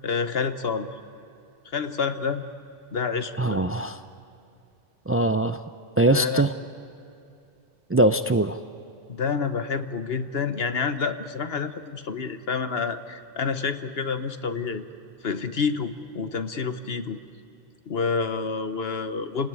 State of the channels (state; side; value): normal; both; correlation -0.02